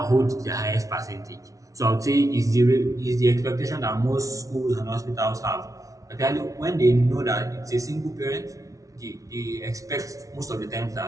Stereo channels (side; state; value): left; late; 0.17 ms